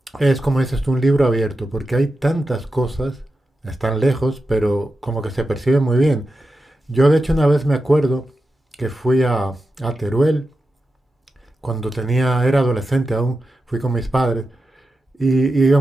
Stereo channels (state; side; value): normal; both; correlation 0.91